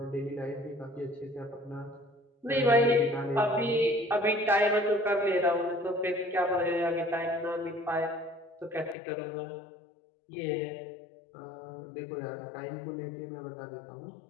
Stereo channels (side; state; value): right; drops out; at 9.0 s